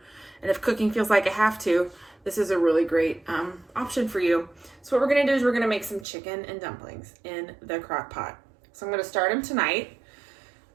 And if cooking feels like a have to, this is a really great option for you. So what we're gonna do is we're gonna make some chicken and dumplings in the crock pot. So I'm gonna start them tonight.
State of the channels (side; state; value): left; drops out; at 6.1 s